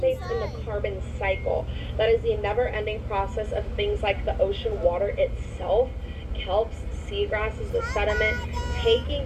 in the carbon cycle. That is the never-ending process of things like the ocean water itself, kelps, seagrasses, the sediment,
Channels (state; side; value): identical; both; correlation 1.00